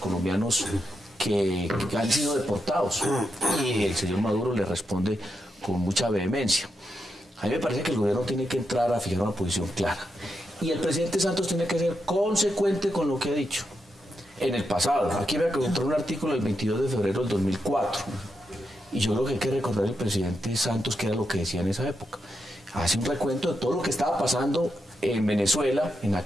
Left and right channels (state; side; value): normal; both; correlation 0.85